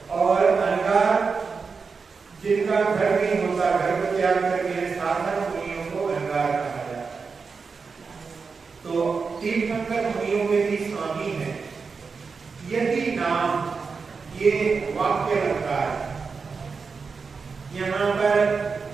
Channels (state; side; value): quieter; left; 5.0 dB